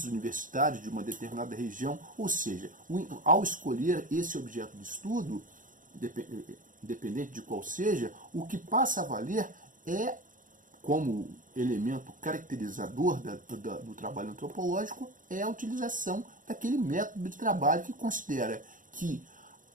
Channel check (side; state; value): left; late; 0.39 ms